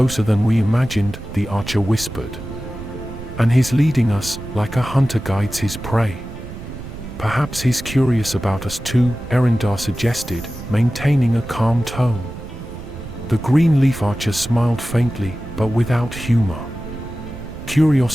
than we imagined," the archer whispered. "And he's leading us, like a hunter guides his prey." "Perhaps he's curious about us too," Eryndar suggested, maintaining a calm tone. The Greenleaf Archer smiled faintly, but without humor.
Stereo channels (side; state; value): right; noise; rumble, 11 dB below the sound